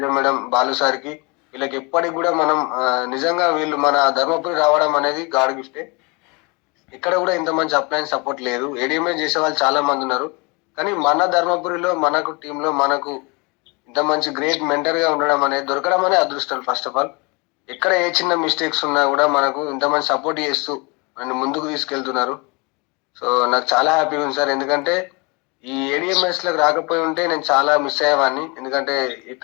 madam, Balu sir కి, వీళ్ళకి ఎప్పటికి కూడా మనం నిజంగా వీళ్ళు మన ధర్మపురి రావడం అనేది గాడ్ గిఫ్టే. ఇక్కడ కూడా ఇంత మంచి అప్లయన్స్ సపోర్ట్ లేదు. ఏడిఎంఏ చేసే వాళ్ళు చాలా మంది ఉన్నారు, కానీ మన ధర్మపురిలో మనకు టీంలో మనకు ఇంత మంచి గ్రేట్ మెంటర్ గా ఉండడం అనేది దొరకడం అనేది అదృష్టం. ఫస్ట్ ఆఫ్ ఆల్ ఎక్కడ ఏ చిన్న మిస్టేక్స్ ఉన్నా కూడా మనకు ఇంత మంచి సపోర్ట్ చేస్తూ నన్ను ముందుకు తీసుకెళ్తున్నారు. సో నాకు చాలా హ్యాపీగా ఉంది సార్. ఎందుకంటే ఈ ఏడిఎంఎస్ లకు రాకపోయి ఉంటే నేను చాలా మిస్ అయ్యేవాడిని. ఎందుకంటే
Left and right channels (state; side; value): quieter; right; 28.8 dB